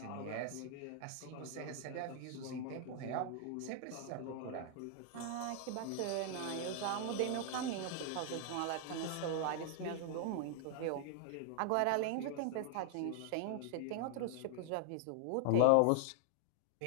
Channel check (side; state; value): both; different; correlation 0.00